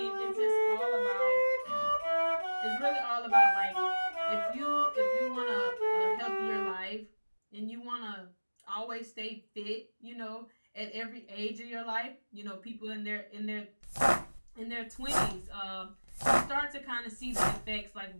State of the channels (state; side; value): inverted; both; correlation -1.00